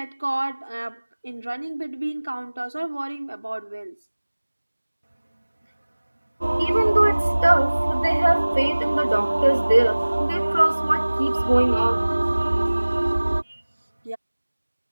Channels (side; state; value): both; inverted; correlation -1.00